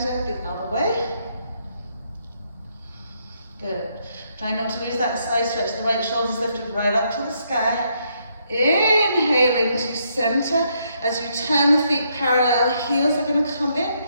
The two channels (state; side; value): inverted; both; correlation -0.74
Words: the other way. Good. Try not to lose that side stretch. The right shoulder's lifted right up to the sky. Inhaling to center. As you turn the feet parallel, heels are going to come in.